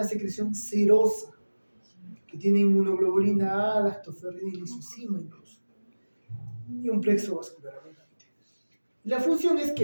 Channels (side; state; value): both; inverted; correlation -1.00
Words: secreción serosa, que tiene inmunoglobulina A, lactoferrina y lisocima incluso, y un plexo vascular abundante. La función es